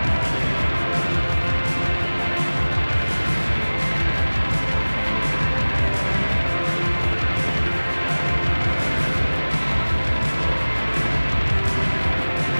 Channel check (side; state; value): both; inverted; correlation -1.00